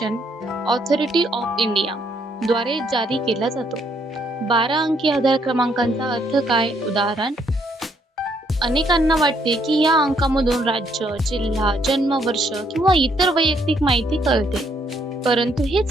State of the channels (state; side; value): normal; both; correlation 0.70